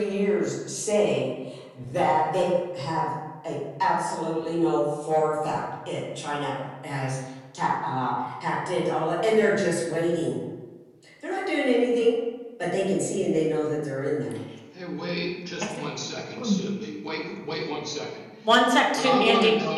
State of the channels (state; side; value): identical; both; correlation 1.00